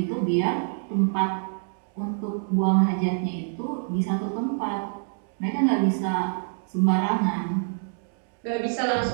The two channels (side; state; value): left; silent; digital silence